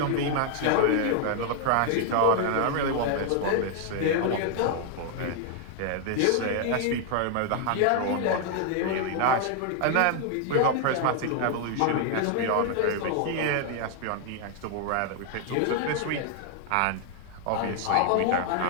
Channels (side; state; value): both; different; correlation 0.00